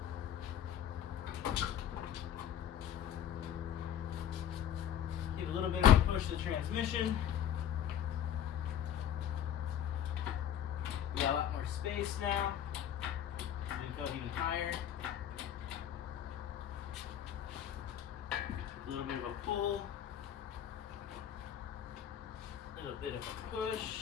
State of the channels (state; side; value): quieter; right; 9.9 dB